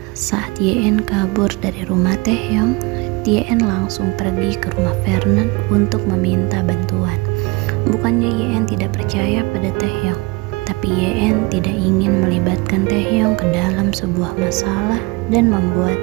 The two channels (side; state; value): left; quieter; 25.6 dB